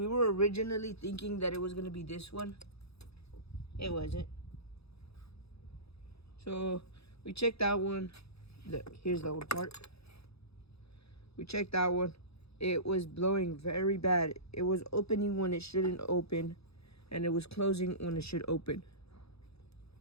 were originally thinking that it was gonna be this one. It wasn't. So we checked that one. Look, here's the old part. We checked that one. It was blowing very bad. It was opening when it shouldn't open, and it was closing when it should open.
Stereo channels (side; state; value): right; late; 0.78 ms